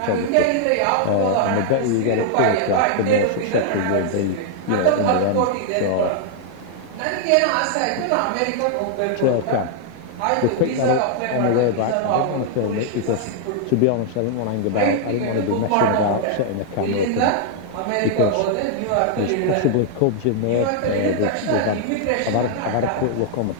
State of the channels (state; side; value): different; both; correlation -0.01